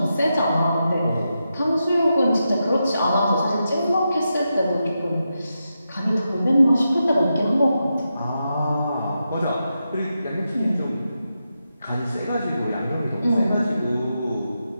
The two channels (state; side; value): inverted; both; correlation -0.87